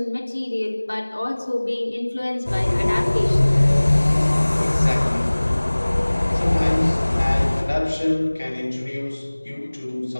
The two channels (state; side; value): inverted; both; correlation -1.00